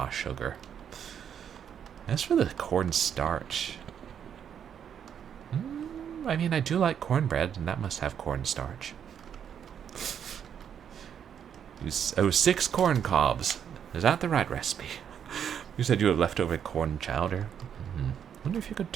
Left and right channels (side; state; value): left; quieter; 8.5 dB